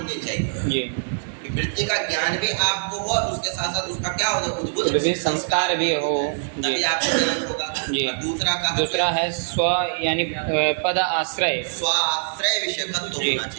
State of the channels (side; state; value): left; silent; 63 dB below the other